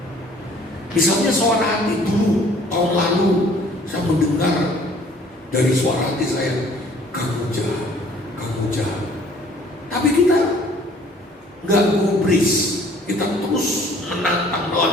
Misalnya suara hati dulu, tahun lalu saya mendengar dari suara hati saya, kamu jahat, kamu jahat. Tapi kita nggak gubris, kita terus menantang,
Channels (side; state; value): both; normal; correlation 0.56